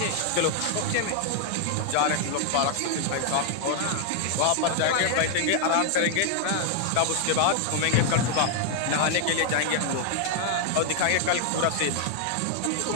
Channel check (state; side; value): different; both; correlation 0.00